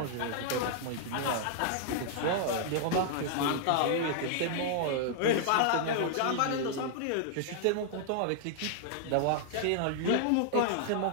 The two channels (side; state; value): both; different; correlation -0.01